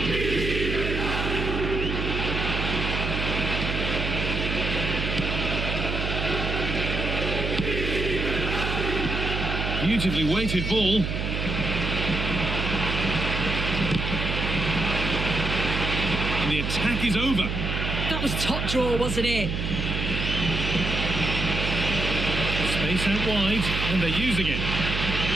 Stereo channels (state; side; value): noise; right; hum, 2 dB below the sound